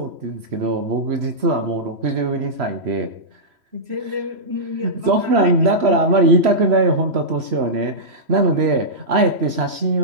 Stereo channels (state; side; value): late; left; 3.0 ms